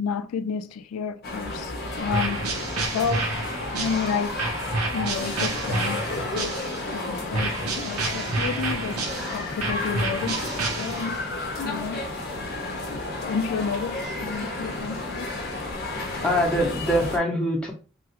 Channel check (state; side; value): normal; both; correlation 0.32